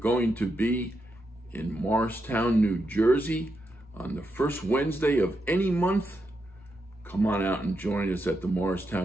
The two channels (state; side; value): normal; both; correlation 0.84